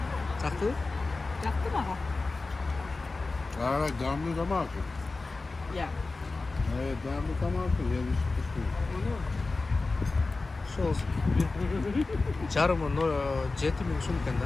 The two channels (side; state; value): right; quieter; 3.6 dB